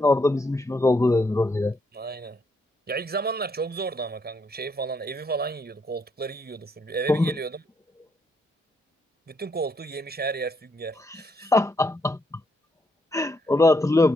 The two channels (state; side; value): normal; both; correlation 0.75